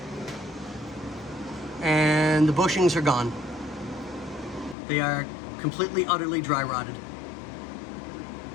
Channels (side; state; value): right; drops out; at 4.8 s